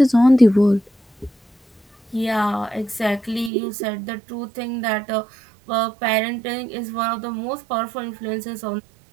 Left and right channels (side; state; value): left; drops out; at 3.5 s